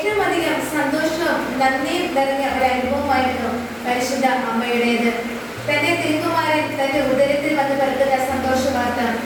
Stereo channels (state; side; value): identical; both; correlation 1.00